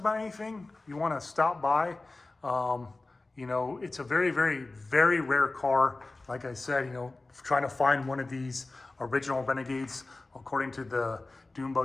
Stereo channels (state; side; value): quieter; right; 3.2 dB